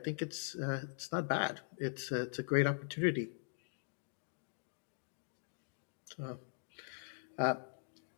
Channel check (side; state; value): right; silent; digital silence